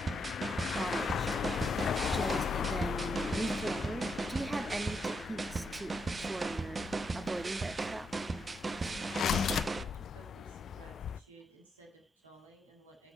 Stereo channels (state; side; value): normal; both; correlation 0.80